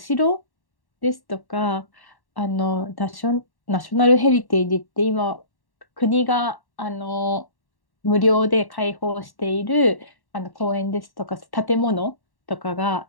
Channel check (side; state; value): right; late; 1.1 ms